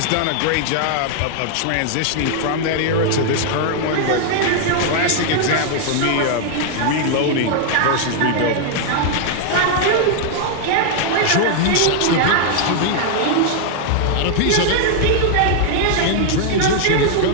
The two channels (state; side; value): different; both; correlation 0.00